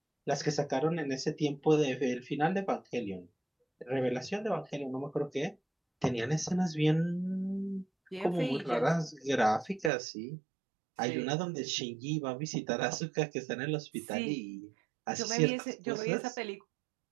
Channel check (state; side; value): drops out; left; at 9.9 s